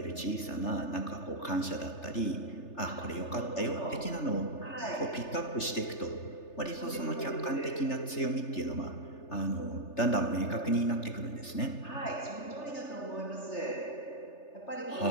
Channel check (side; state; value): right; late; 3.3 ms